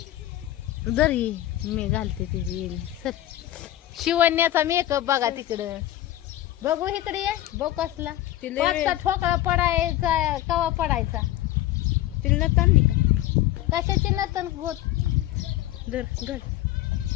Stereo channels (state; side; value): quieter; right; 14.3 dB